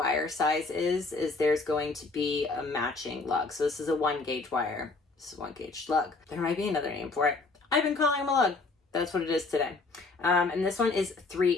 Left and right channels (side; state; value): right; quieter; 3.7 dB